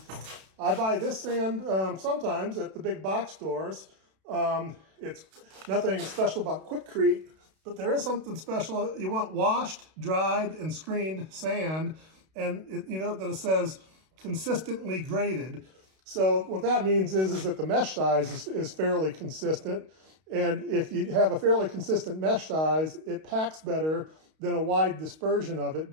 buy this sand sometimes at the big box stores. It's nothing special about Quikrete, but there is something special. You want washed, dried, and screened sand, and you know that it says consistently graded. So what that means is that the mesh size is fairly consistent. And if you have a fairly consistent mesh size, it packs better than a wide dispersion of it,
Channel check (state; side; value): late; left; 32 ms